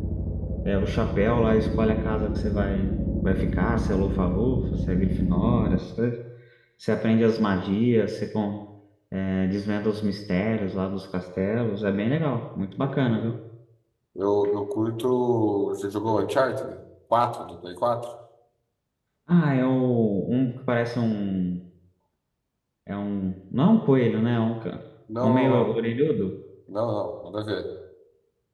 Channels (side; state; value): both; identical; correlation 1.00